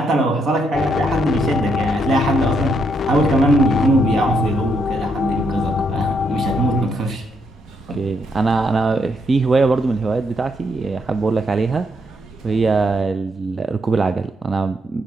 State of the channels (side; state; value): both; normal; correlation 0.76